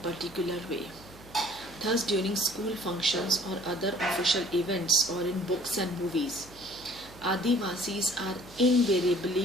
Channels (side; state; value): left; noise; hum, 22 dB below the sound